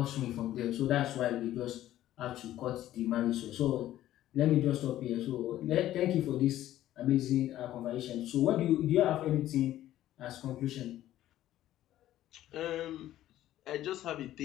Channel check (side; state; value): right; quieter; 13.5 dB